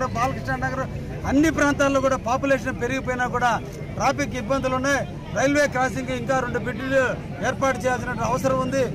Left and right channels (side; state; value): both; identical; correlation 1.00